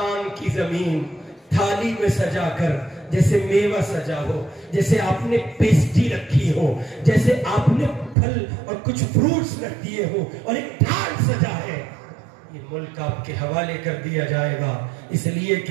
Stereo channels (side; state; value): left; drops out; at 8.2 s